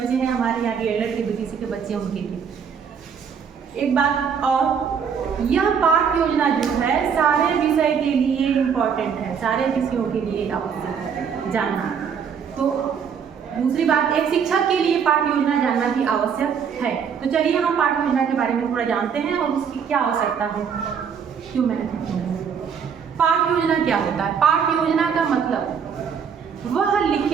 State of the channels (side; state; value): left; quieter; 7.0 dB